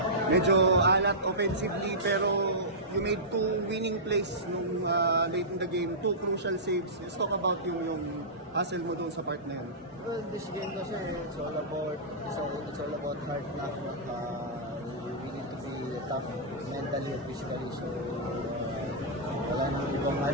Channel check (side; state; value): both; normal; correlation -0.16